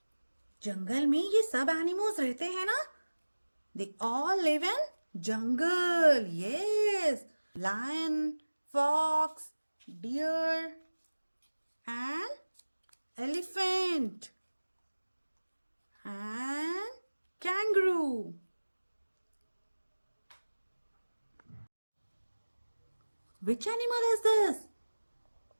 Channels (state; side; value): inverted; both; correlation -1.00